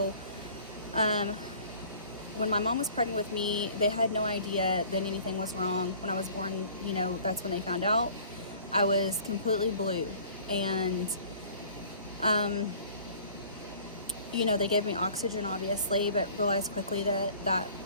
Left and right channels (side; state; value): both; inverted; correlation -0.50